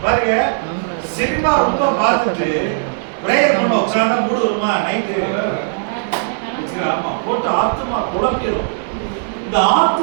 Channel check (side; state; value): left; silent; digital silence